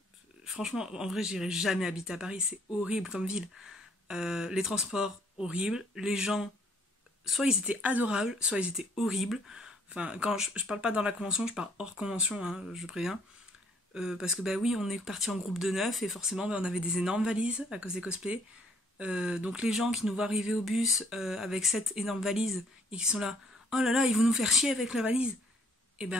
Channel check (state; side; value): normal; both; correlation 0.64